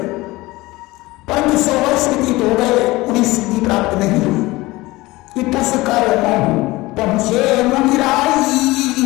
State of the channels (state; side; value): quieter; right; 20.2 dB